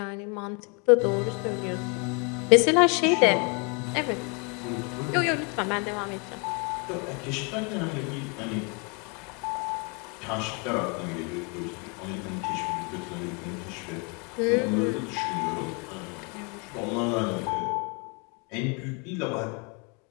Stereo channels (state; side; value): quieter; right; 33.8 dB